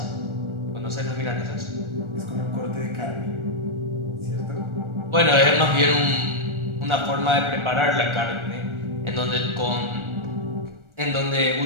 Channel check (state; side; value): late; left; 1.4 ms